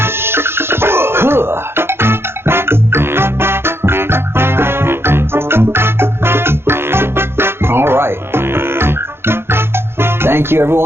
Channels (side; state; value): left; late; 0.11 ms